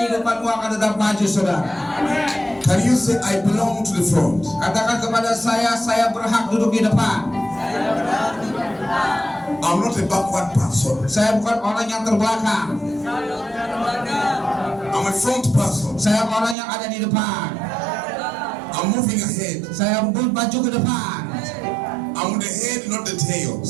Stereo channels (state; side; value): drops out; left; at 16.6 s